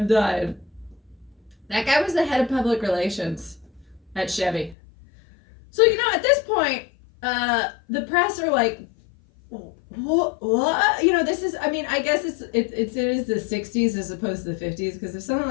guy was the head of public relations at Chevy. So, at this point, the press are like, what? This is, I guess it is the 60s as opposed to the 50s, because if something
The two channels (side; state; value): right; drops out; at 4.8 s